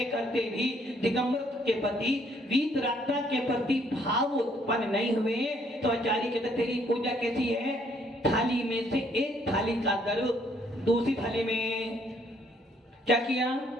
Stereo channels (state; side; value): normal; both; correlation 0.67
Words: करते भी दिगंबरत्व के प्रति, वीतरागता के प्रति भाव उत्पन्न नहीं हुए तो आचार्य कहते तेरी पूजा कैसी है? थाली में से एक थाली का द्रव दूसरी थाली में क्या किया?